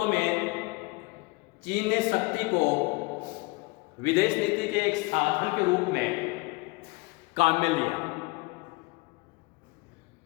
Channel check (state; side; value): quieter; right; 24.6 dB